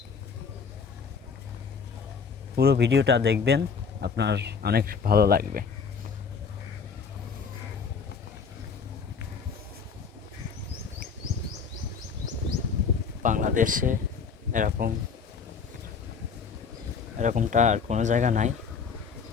পুরো ভিডিওটা দেখবেন, আপনার অনেক ভালো লাগবে। বাংলাদেশে এরকমটা আর কোনো জায়গা নাই।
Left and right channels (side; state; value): right; quieter; 5.8 dB